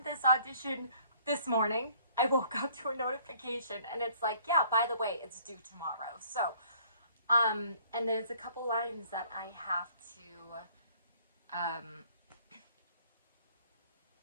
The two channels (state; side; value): inverted; both; correlation -0.58